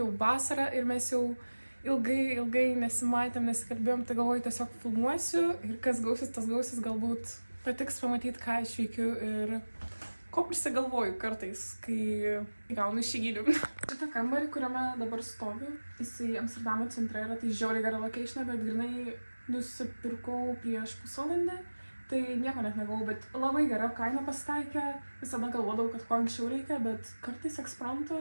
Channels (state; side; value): inverted; both; correlation -1.00